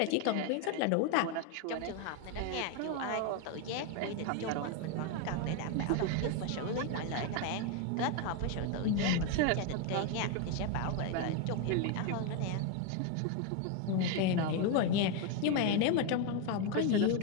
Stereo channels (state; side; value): different; both; correlation 0.01